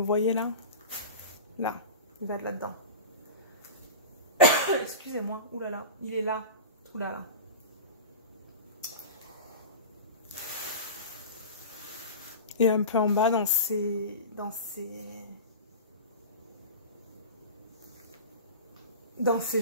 voyez là? Là, il va être là-dedans. Excusez-moi, oulala, il est là, oulala. Et un peu en bas dans ses jambes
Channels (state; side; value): inverted; both; correlation -0.31